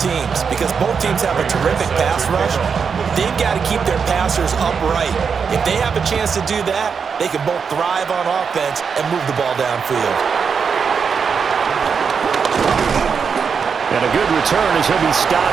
because both teams have a terrific pass rush. They've got to keep their passers upright. If they have a chance to do that, they can both thrive on offense and move the ball downfield. And a good return as he'll be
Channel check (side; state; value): left; quieter; 6.1 dB